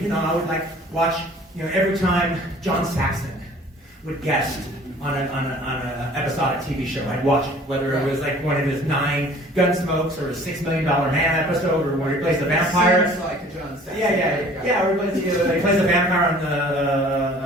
I would watch every time John Saxon would guest on an episodic TV show. I'd watch it, whether it was like one of his 9 Gunsmokes or a $6 Million Man episode, or where he plays the vampire. Seems like a John Saxon. Yeah. Or he plays the vampire on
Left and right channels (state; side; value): normal; both; correlation 0.50